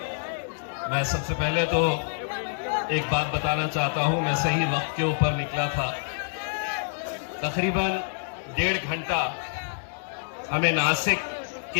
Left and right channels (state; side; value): silent; right; digital silence